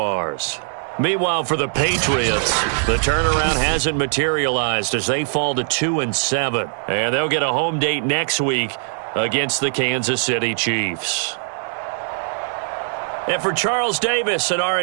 Meanwhile, for the Patriots, the turnaround hasn't materialized as they fall to 2-7. And they'll get a home date next week against the Kansas City Chiefs. And for Charles Davis and our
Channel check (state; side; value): silent; left; digital silence